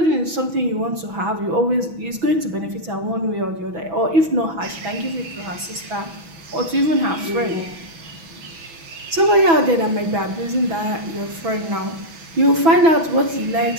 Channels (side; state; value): left; late; 6.1 ms